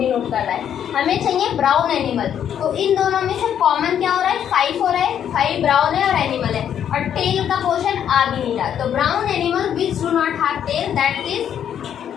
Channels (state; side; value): quieter; right; 9.3 dB